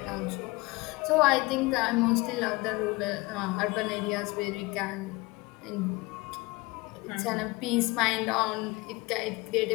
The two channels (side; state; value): right; quieter; 23.4 dB